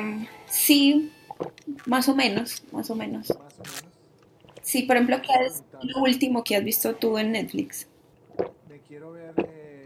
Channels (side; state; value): both; identical; correlation 1.00